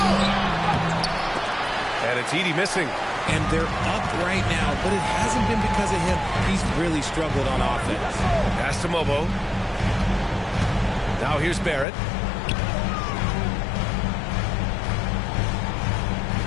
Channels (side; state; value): right; drops out; at 11.9 s